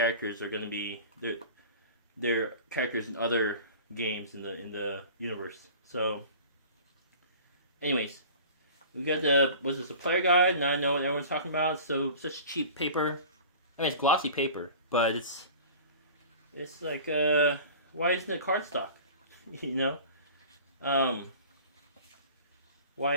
are going to be their characters in other games in the universe. So, anyways, we got the player guide. Now I know what everyone's talking about. So such cheap paper. It's glossy paper, but it's like why isn't it cardstock? You know, why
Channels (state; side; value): inverted; both; correlation -0.40